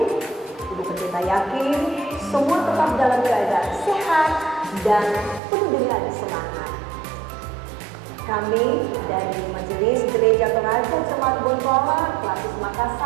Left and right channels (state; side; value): drops out; left; at 5.4 s